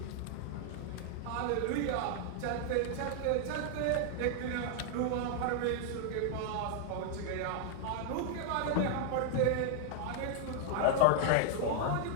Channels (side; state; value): both; different; correlation 0.00